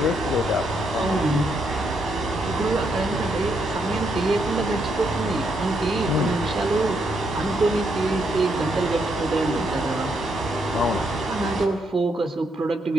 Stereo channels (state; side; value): normal; both; correlation 0.77